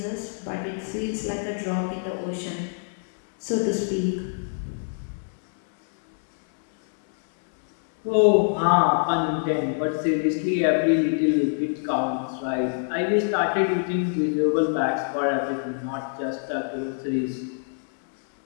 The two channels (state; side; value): silent; right; 61 dB below the other